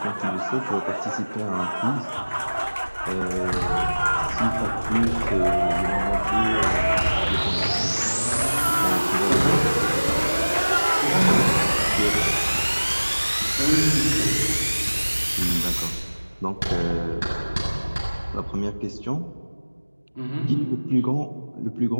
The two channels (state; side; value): inverted; both; correlation -1.00